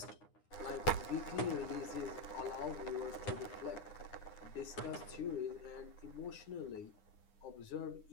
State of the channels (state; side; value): late; right; 9.7 ms